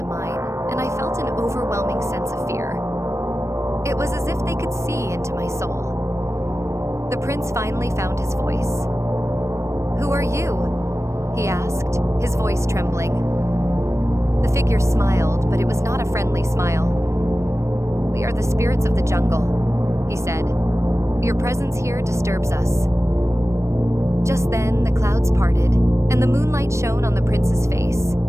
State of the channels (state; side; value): late; left; 0.14 ms